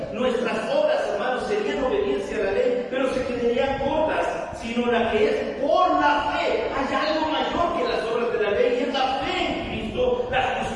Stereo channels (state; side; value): identical; both; correlation 1.00